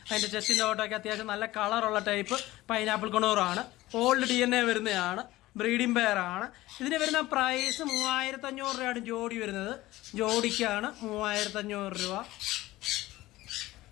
അതിൻ്റെ ചെസ്റ്റിൻ്റെ ഓട്ടൊക്കെ അത്യാവശ്യം നല്ല കളറുള്ള ടൈപ്പ് പൈനാപ്പിൾ കുണൂറാണ്. ഓൾഡ് DNA വരുന്നതാണ്. ബ്രീഡിംഗ് പെയറാണ്. ഇതിന് വരുന്ന പ്രൈസ് 3,500 രൂപയാണ് ജോഡി വരുന്നത്. ജോഡിക്കാണ് 3,500 രൂപ.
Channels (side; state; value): right; quieter; 17.4 dB